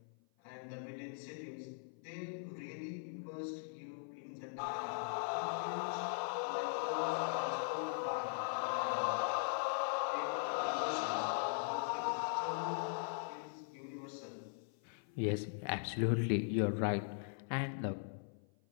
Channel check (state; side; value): silent; right; 51 dB below the other